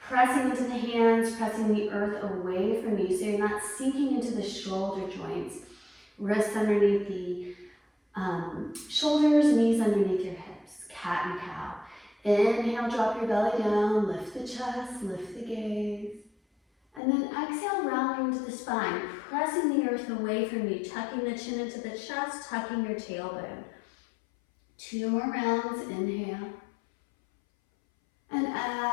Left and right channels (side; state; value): right; drops out; at 17.0 s